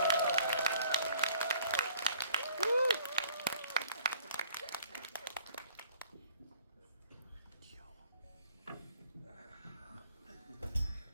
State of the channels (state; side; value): inverted; both; correlation -0.57